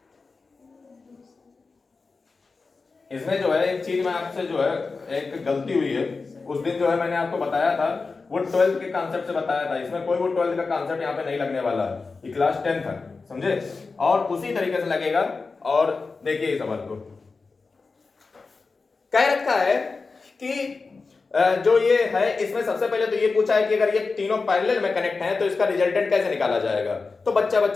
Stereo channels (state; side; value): quieter; right; 4.2 dB